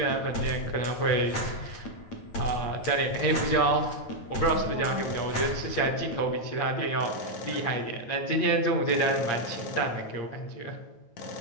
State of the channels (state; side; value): late; right; 9.2 ms